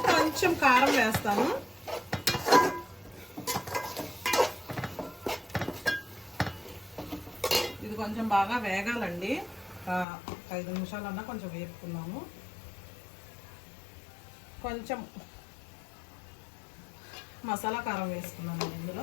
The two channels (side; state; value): right; drops out; at 10.1 s